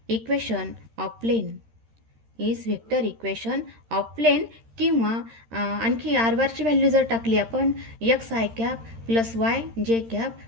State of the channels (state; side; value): late; left; 13 ms